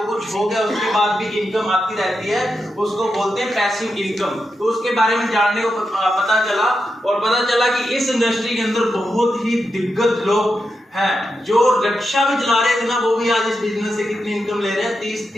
कुछ हो गया, उसके बाद भी इनकम आती रहती है, उसको बोलते हैं पैसिव इनकम। तो उसके बारे में जानने को पता चला, और पता चला कि इस इंडस्ट्री के अंदर बहुत ही दिग्गज लोग हैं। जो रिक्शा भी चला रहे थे ना, वो भी आज इस बिजनेस से कितनी इनकम ले रहे हैं? 30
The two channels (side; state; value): both; normal; correlation 0.87